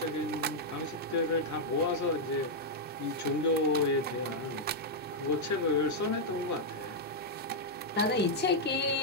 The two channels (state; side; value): normal; both; correlation -0.04